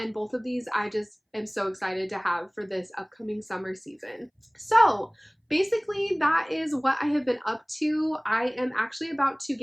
both of these I just am so excited to have for this upcoming summer season. So basically, that is what I have been up to. I am actually about to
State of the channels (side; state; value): both; identical; correlation 1.00